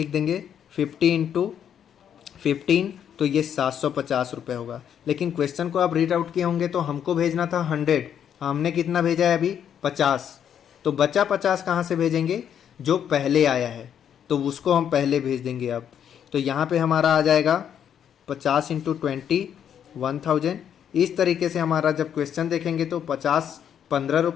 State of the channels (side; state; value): right; quieter; 9.0 dB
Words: देंगे 50 × 15, तो ये 750 रुपये होगा। लेकिन क्वेश्चन को आप रीड आउट किए होंगे तो हमको भेजना था 100, हमने कितना भेजा है अभी 50, तो बचा 50 कहाँ से भेजेंगे, जो पहले आया है तो उसको हम पहले भेज देंगे। अब तो यहाँ पे हमारा आ जाएगा 50 × 20 1000। इस तरीके से हमारा जब क्वेश्चन देखेंगे तो 15